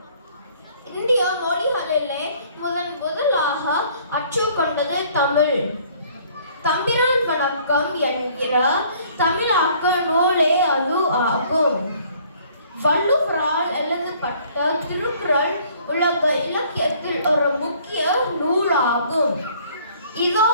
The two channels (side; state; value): both; inverted; correlation -0.58